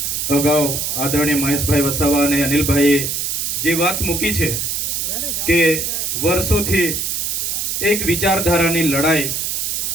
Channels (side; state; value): right; noise; hiss, 1 dB below the sound